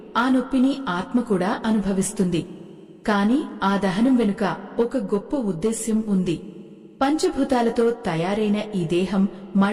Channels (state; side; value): identical; both; correlation 1.00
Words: ఆ నొప్పిని ఆత్మ కూడా అనుభవిస్తుంది. కాని ఆ దహనం వెనుక ఒక గొప్ప ఉద్దేశ్యం ఉంది. పంచభూతాలతో తయారైన ఈ దేహం